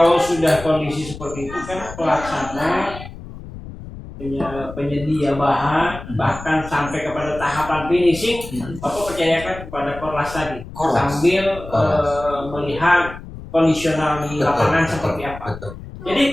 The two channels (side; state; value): left; noise; rumble, 13 dB below the sound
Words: sudah kondisi seperti itu kan pelaksana, penyedia bahan, bahkan sampai kepada tahapan finishing, Bapak percayakan kepada Korlas tadi, sambil melihat kondisional di lapangan seperti apa.